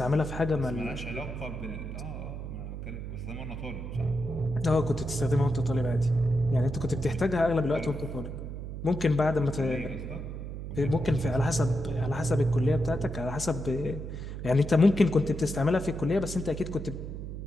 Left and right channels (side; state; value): right; noise; hum, 7 dB below the sound